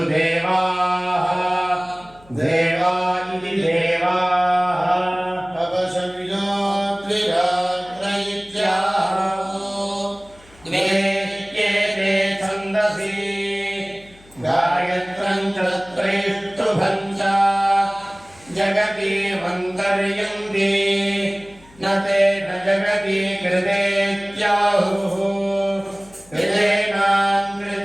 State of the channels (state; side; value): noise; left; hum, 26 dB below the sound